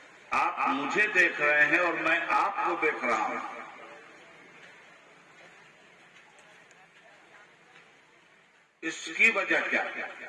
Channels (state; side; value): identical; both; correlation 1.00